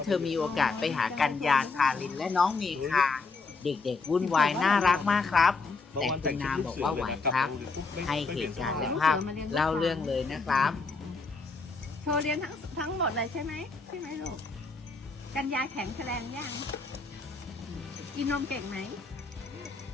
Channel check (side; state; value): right; quieter; 4.1 dB